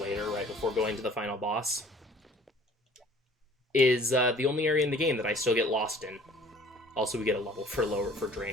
right before going to the final boss, is the only area in the game that I still get lost in. Also, we get a level for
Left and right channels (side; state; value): both; normal; correlation 0.52